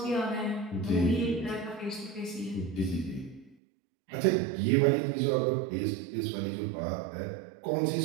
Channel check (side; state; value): left; drops out; at 3.6 s